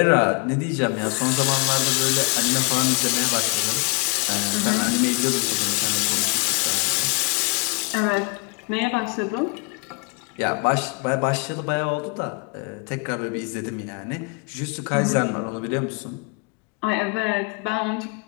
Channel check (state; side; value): quieter; right; 31.8 dB